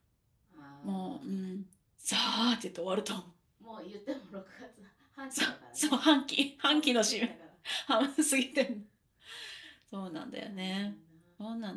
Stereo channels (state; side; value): identical; both; correlation 1.00